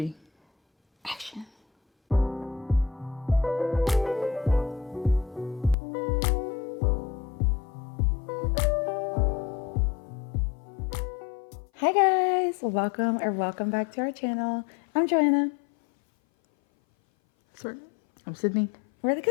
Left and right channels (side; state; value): right; drops out; at 5.8 s